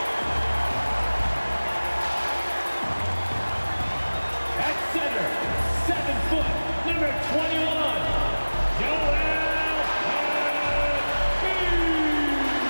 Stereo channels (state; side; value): inverted; both; correlation -1.00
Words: At center, 7 foot, number 21.